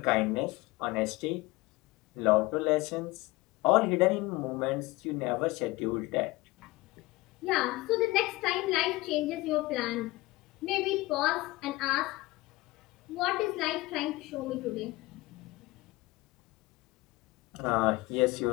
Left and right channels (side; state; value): right; quieter; 20.9 dB